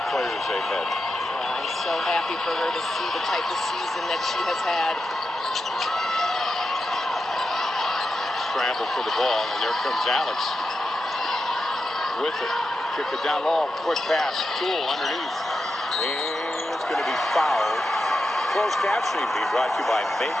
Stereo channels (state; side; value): normal; both; correlation 0.89